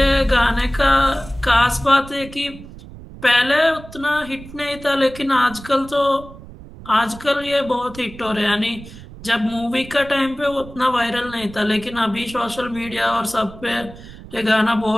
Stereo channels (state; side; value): noise; right; rumble, 17 dB below the sound